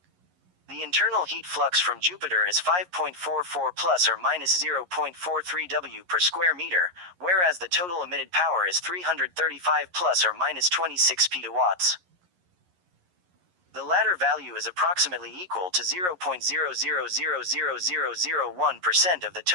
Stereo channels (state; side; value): late; left; 11 ms